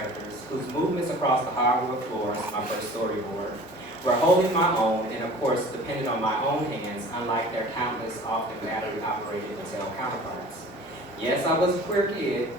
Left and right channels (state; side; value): normal; both; correlation 0.44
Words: whose movements across the hardwood floors, my first storyboard, were holding my own and of course depended on my own hands, unlike their countless, often battery-operated Mattel counterparts. Yes, I was a queer kid,